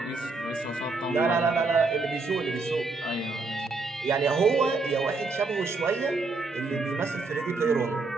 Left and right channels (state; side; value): quieter; left; 3.8 dB